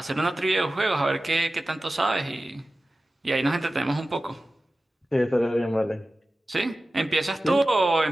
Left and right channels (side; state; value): both; normal; correlation 0.95